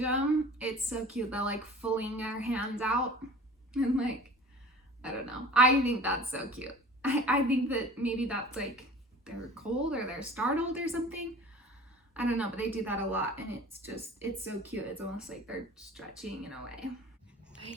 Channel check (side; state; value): both; normal; correlation 0.42